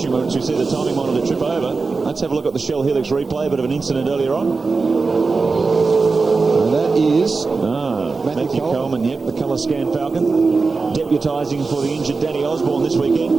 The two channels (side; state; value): left; quieter; 4.2 dB